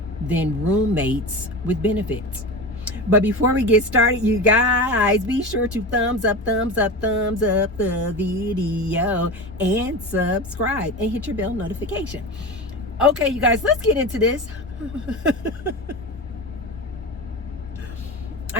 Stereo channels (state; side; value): normal; both; correlation 0.26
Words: than roommates with benefits. But before we get started, you guys, be sure to thumbs up the video and subscribe and hit your bell notification. Okay, you guys, let's get into this.